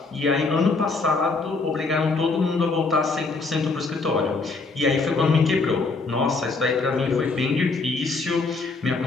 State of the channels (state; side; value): quieter; right; 3.9 dB